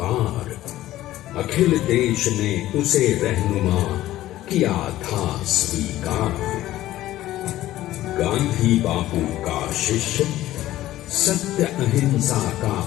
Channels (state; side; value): quieter; right; 14.8 dB